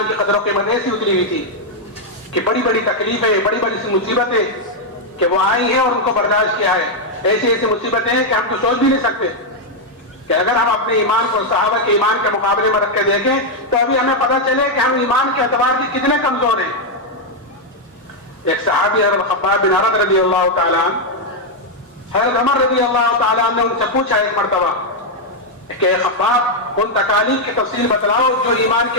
کی قدر و قیمت ایسی اتری ہوئی تھی کہ بڑی بڑی تکلیفیں، بڑی بڑی سی مصیبتیں کہ وہ آئی ہیں اور ان کو برداشت کیا ہے. ایسی ایسی مصیبتیں ہیں کہ ہم تو سوچ بھی نہیں سکتے کہ اگر ہم اپنے ایمان کو صحابہ کے ایمان کے مقابلے میں رکھ کے دیکھیں تو ابھی ہمیں پتہ چلے کہ ہم ایمان کے اعتبار سے کتنے کمزور ہیں. ایک صحابی حضرت خباب بن عرد رضی اللہ تعالیٰ عنہ، حضرت عمر رضی اللہ تعالیٰ عنہ نے ان سے پوچھا ایک مرتبہ کہ خباب ان تکالیف کی تفصیل بتلاؤ جو ایمان کی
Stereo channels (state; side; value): normal; both; correlation 0.00